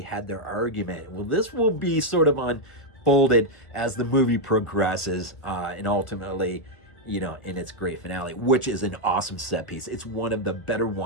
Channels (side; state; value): right; late; 1.4 ms